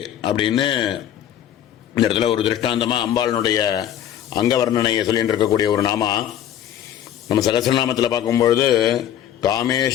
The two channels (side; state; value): right; quieter; 10.7 dB